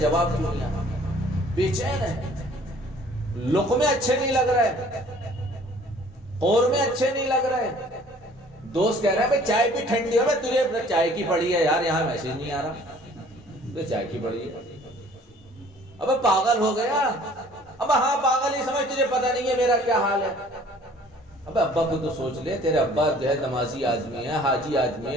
کیوں نہیں آیا، بے چین ہے، لقمے اچھے نہیں لگ رہے، قورمے اچھے نہیں لگ رہے۔ دوست کہہ رہا ہے بھائی چائے بھی ٹھنڈی ہو، میں تجھے چائے کی پڑی ہے یار، یہاں میسج نہیں آ رہا، تو چائے کی پڑی ہے۔ ابے پاگل ہو گیا، اب ہاں پاگل ہی سمجھ، تجھے پتہ نہیں ہے میرا کیا حال ہے۔ اب ابا کو تو سوچ لے، تیرے ابا جو ہے نمازی آدمی ہے، حاجی آدمی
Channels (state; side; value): normal; both; correlation 0.54